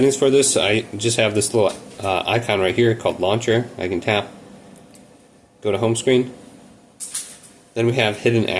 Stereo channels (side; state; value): both; identical; correlation 1.00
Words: for this. I just have this little icon right here called launcher. I can tap, go to home screen. Then we have hidden